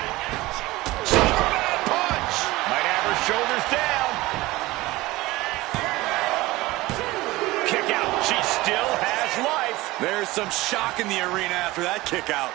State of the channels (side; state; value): left; quieter; 19.5 dB